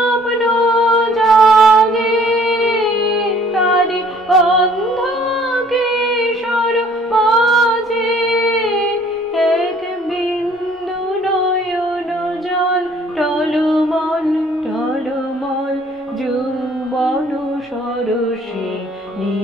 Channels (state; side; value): normal; both; correlation 0.57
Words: জাগে তার অন্ধ কিশোর মাঝে এক বিন্দু নয়ন জল টলমল টলমল যৌবন সরসী